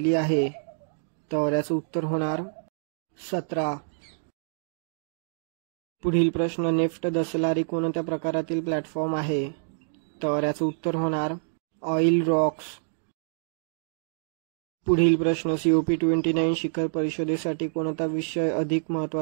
आहे? तर याचं उत्तर होणार 17. पुढील प्रश्न, नेफ्ट दसलारी कोणत्या प्रकारातील प्लॅटफॉर्म आहे? तर याचं उत्तर होणार ऑइल रॉक्स. पुढील प्रश्न, COP29 शिखर परिषदेसाठी कोणता विषय अधिक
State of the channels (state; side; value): silent; left; digital silence